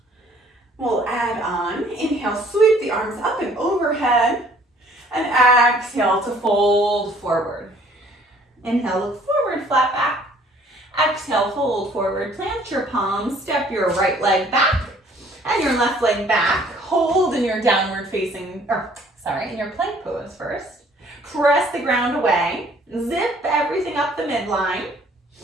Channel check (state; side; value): normal; both; correlation 0.57